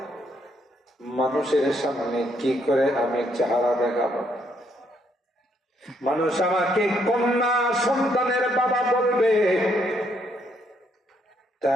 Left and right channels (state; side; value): normal; both; correlation 0.72